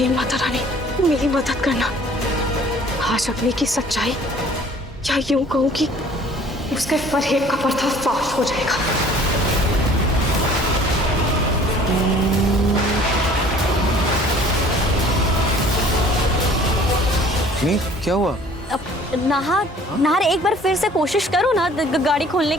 माता रानी, मेरी मदद करना। आज अग्नि की सच्चाई, या यूं कहूं कि उसके फरेब का पर्दाफाश हो जाएगा। नहीं, क्या हुआ? नाहर एक बार फिर से कोशिश करो ना गाड़ी खोलने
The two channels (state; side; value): normal; both; correlation 0.52